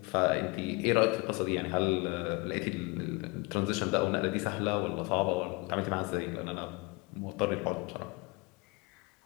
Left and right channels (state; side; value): quieter; right; 27.4 dB